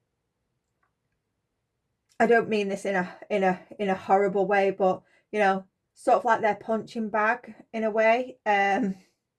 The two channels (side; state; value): both; identical; correlation 1.00